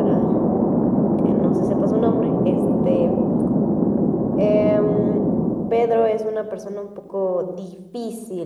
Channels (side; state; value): both; identical; correlation 1.00